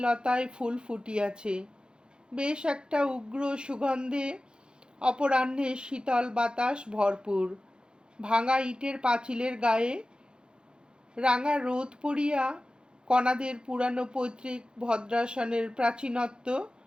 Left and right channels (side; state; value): left; late; 0.049 ms